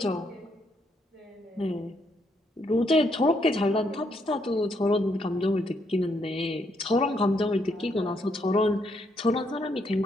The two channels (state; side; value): normal; both; correlation 0.75